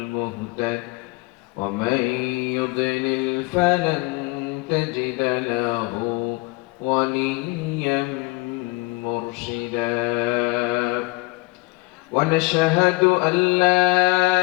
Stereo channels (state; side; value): quieter; right; 25.2 dB